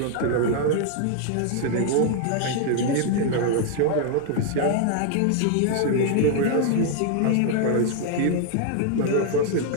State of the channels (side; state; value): both; different; correlation 0.00